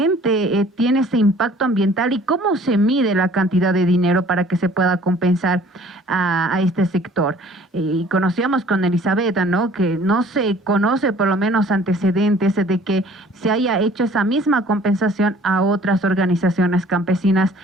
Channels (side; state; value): both; normal; correlation 0.53